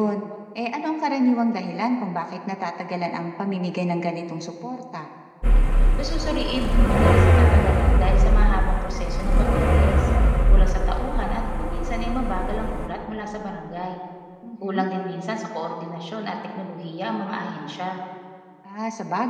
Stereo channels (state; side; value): identical; both; correlation 1.00